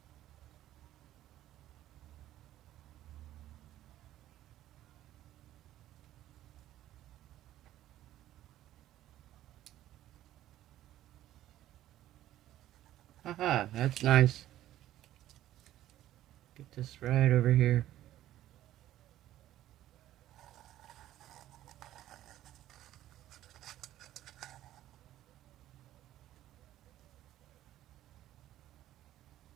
Haha, that's nice. Get this right over here.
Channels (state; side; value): quieter; left; 13.5 dB